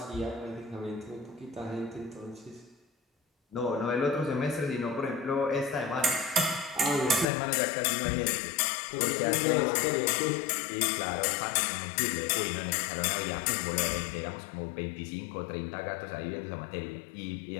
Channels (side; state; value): right; drops out; at 7.2 s